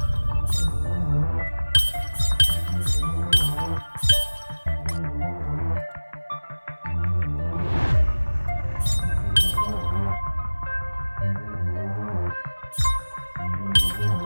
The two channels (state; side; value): inverted; both; correlation -1.00